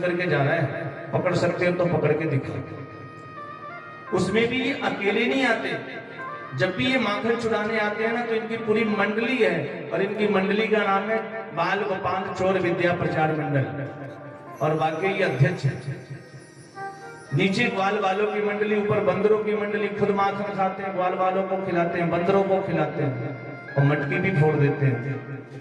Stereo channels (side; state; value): both; identical; correlation 1.00